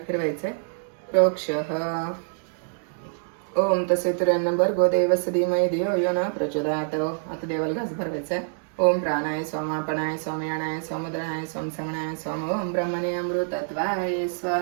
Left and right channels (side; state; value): left; silent; digital silence